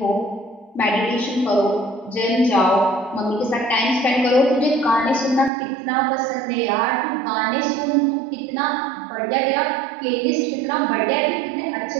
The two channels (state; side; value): drops out; left; at 5.5 s